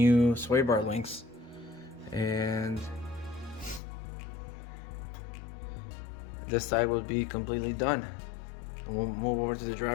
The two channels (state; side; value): drops out; right; at 3.8 s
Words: Swaybar links, and this side will be completely done. And we'll move over to the